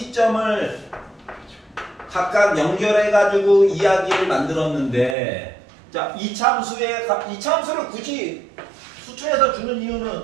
각각 연결해 가지고 이야기를 만들었는데 자 이 참수를 굳이 수초에서 주는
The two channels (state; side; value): drops out; left; at 5.2 s